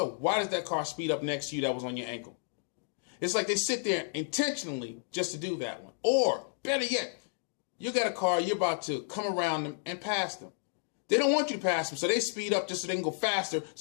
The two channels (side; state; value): right; silent; 56 dB below the other